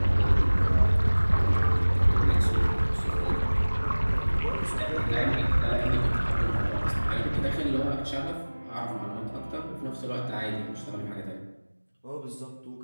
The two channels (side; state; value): both; inverted; correlation -1.00